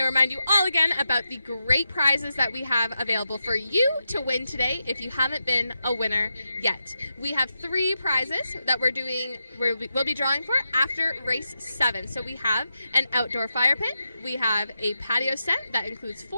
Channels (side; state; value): both; inverted; correlation -0.87